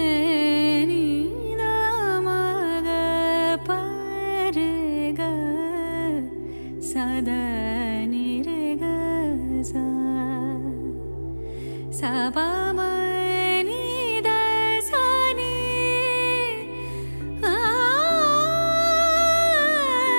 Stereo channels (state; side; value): inverted; both; correlation -1.00